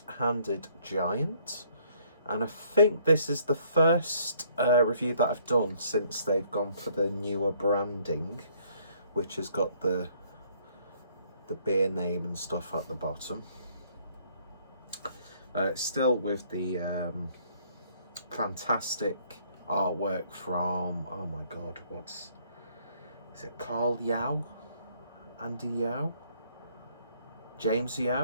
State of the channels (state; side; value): inverted; both; correlation -0.64